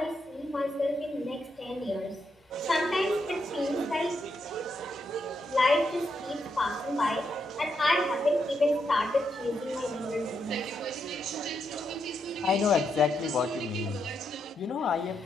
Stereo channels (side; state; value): both; normal; correlation 0.81